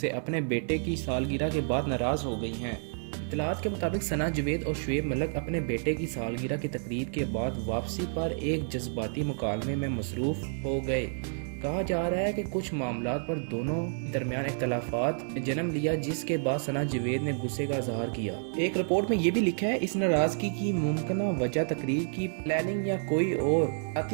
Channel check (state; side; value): silent; left; digital silence